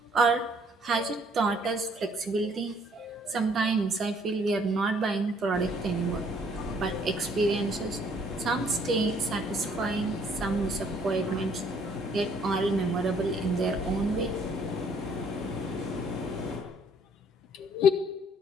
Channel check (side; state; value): both; normal; correlation 0.62